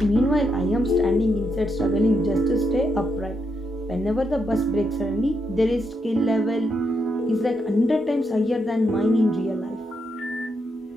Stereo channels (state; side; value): normal; both; correlation 0.80